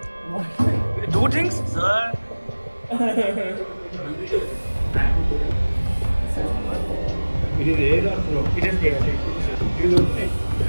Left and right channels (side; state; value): both; inverted; correlation -1.00